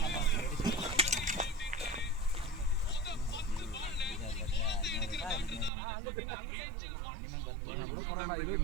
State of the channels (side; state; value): left; drops out; at 5.7 s